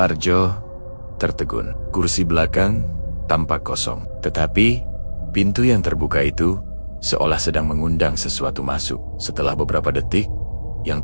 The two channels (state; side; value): inverted; both; correlation -1.00